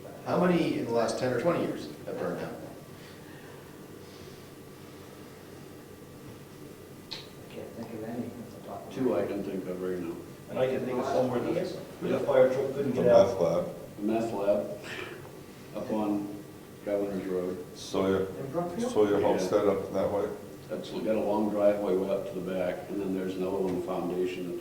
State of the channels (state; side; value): identical; both; correlation 1.00